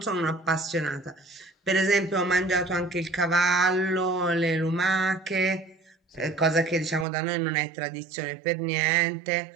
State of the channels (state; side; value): drops out; left; at 7.1 s